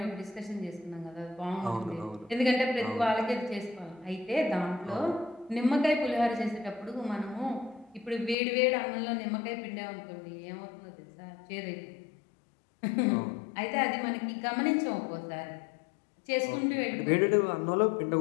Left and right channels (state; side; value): drops out; right; at 8.3 s